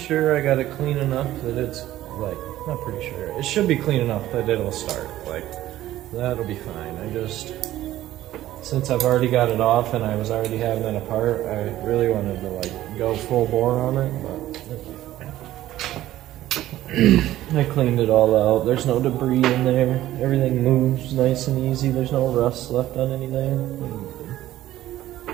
I got it clean enough that it's, like, not pretty sure. It should be clean enough that it'll start. Like, that'll be fine. I just, since I've already got it off and I was already having it apart, I really wanted to, like, go full bore on it, but it'll be fine. I cleaned it all out. There's no debris in there. Everything moves nice and easy. There's no rust left on anything.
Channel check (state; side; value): quieter; left; 14.2 dB